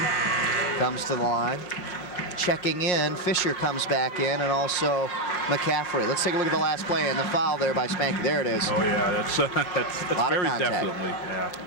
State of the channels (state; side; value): late; right; 5.6 ms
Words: comes to the line. Checking in, Fisher comes back in, and also McCaffrey. Let's take a look at the last play and the foul there by Spanky. There it is. Oh yeah, that's very definitely. Yeah.